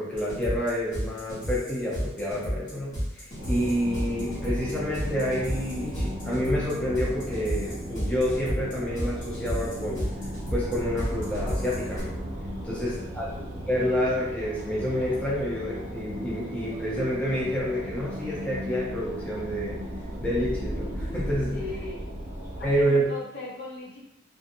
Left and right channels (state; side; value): normal; both; correlation 0.70